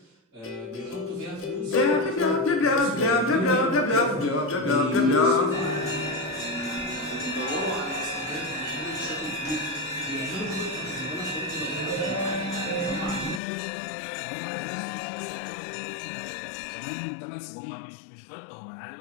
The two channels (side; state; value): right; drops out; at 13.4 s